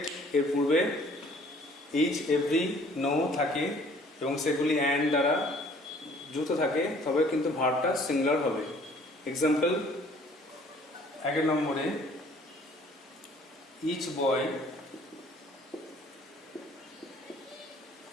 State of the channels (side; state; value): both; normal; correlation 0.56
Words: এর পূর্বে ইচ, এভরি, নো থাকে এবং সেগুলি অ্যান্ড দ্বারা যুক্ত থাকে, তবে কিন্তু ভার্বটা সিঙ্গুলার হবে। এক্সাম্পল 1 নম্বরে, each boy